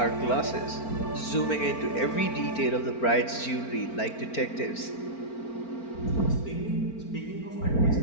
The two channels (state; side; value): late; right; 4.4 ms